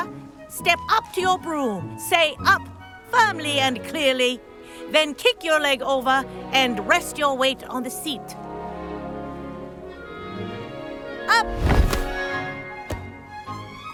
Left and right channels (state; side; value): identical; both; correlation 1.00